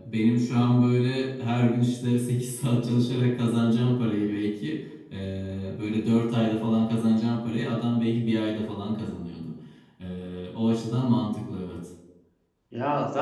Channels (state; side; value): identical; both; correlation 1.00